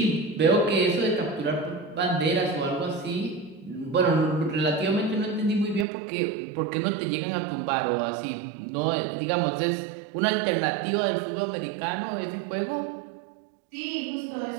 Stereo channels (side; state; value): left; drops out; at 5.9 s